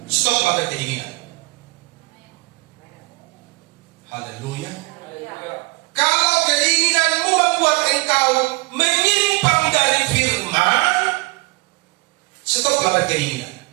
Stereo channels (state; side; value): quieter; left; 27.0 dB